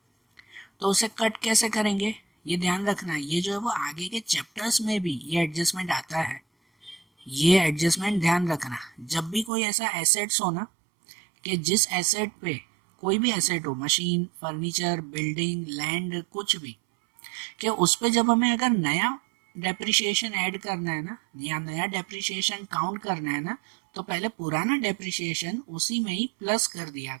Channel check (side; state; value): left; drops out; at 9.5 s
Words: तो उसे कट कैसे करेंगे ये ध्यान रखना है। ये जो है वो आगे के चैप्टर्स में भी ये एडजस्टमेंट आता है, ये एडजस्टमेंट ध्यान रखना। जब भी कोई ऐसा एसेट्स हो ना कि जिस एसेट पे, कोई भी एसेट हो, मशीन, फर्नीचर, बिल्डिंग, लैंड, कुछ भी, कि उस पे जब हमें अगर नया डेप्रिसिएशन ऐड करना है ना, या नया डेप्रिसिएशन काउंट करना है ना, तो पहले पुराना डेप्रिसिएशन उसी में ही प्लस कर दिया